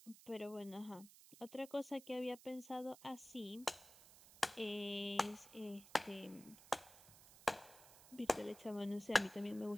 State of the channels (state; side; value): noise; right; hiss, 19 dB below the sound